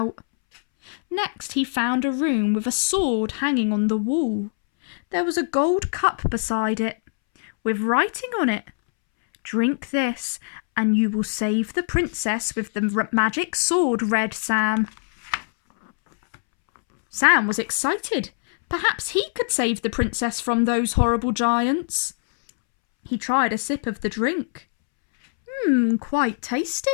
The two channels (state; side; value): silent; right; 63 dB below the other